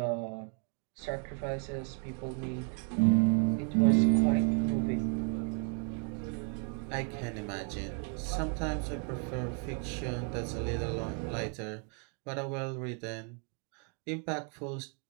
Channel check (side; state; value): left; quieter; 39.7 dB